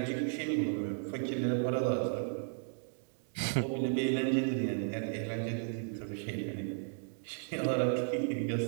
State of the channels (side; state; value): left; silent; 55 dB below the other